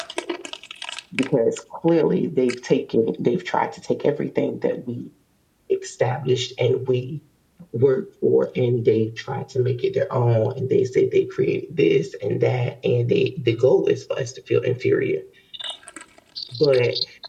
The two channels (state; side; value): identical; both; correlation 1.00